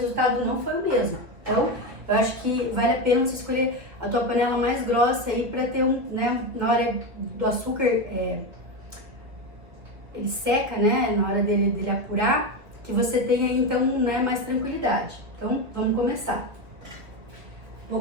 não foi o mesmo. Então, Eu acho que vale a pena você escolher a tua panela mais grossa aí para ter né, na hora do açúcar, ele seca, né, na hora dele apurar, que você tenha então, né, mais tranquilidade. Então, vamos começar. Vou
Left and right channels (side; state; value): left; late; 1.9 ms